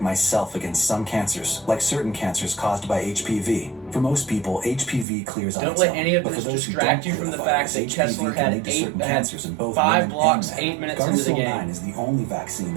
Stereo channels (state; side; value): drops out; left; at 5.1 s